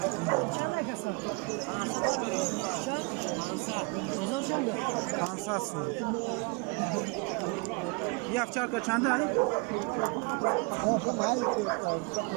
Çak. Pazar çanda. Kansasın. ये अफचार का चांदा है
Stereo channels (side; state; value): left; quieter; 30.4 dB